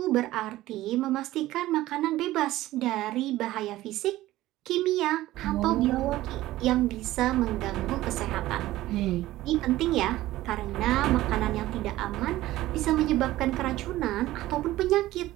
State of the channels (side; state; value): left; quieter; 16.1 dB